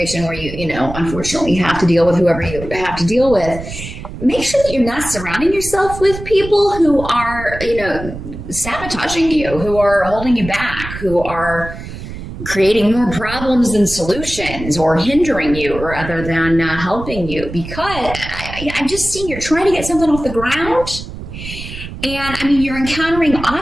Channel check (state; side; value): noise; right; rumble, 10 dB below the sound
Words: where you unfortunately have to deal with whoever you have to deal with, make sure that you're not surrounding yourself with people who are, sabotaging you, who are holding you back, who are creating more problems than solutions or hindering you rather than helping you, because I'm just seeing you're trying to get something off the ground. And you're encountering